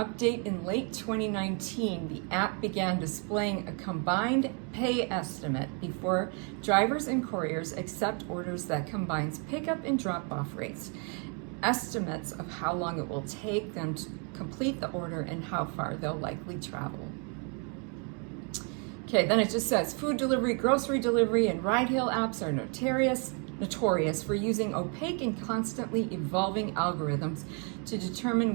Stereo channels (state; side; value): quieter; left; 36.5 dB